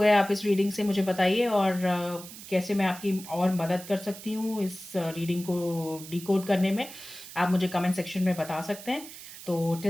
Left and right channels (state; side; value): noise; right; hiss, 14 dB below the sound